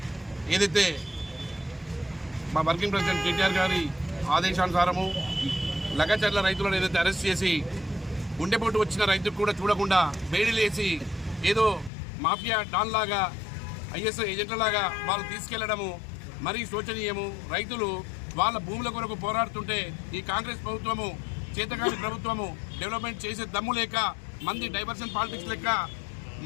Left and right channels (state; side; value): drops out; right; at 11.9 s